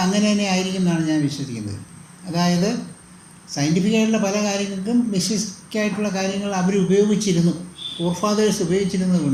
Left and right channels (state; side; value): identical; both; correlation 1.00